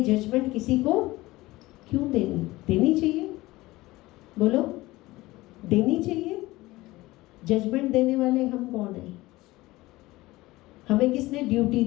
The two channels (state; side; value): quieter; right; 19.2 dB